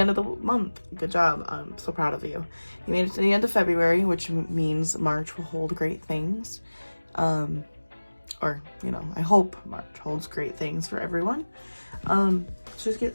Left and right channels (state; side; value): inverted; both; correlation -1.00